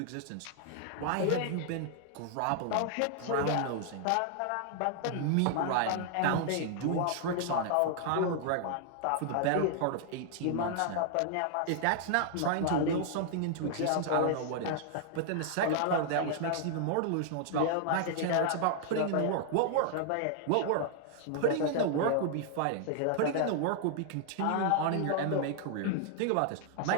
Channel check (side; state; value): both; different; correlation 0.00